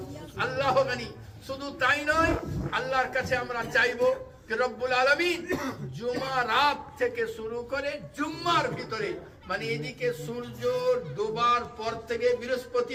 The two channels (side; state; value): both; identical; correlation 1.00